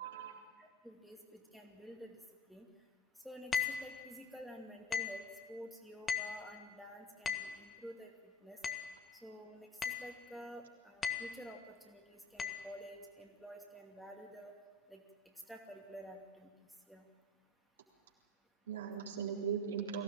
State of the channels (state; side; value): normal; both; correlation 0.36